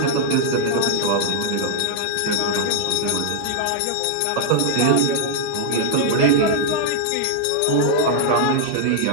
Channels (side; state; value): both; different; correlation -0.01